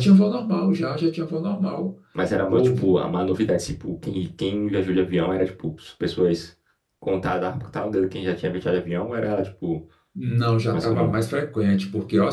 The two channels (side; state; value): both; identical; correlation 1.00